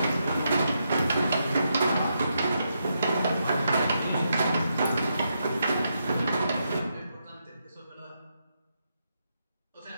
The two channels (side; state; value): both; inverted; correlation -0.82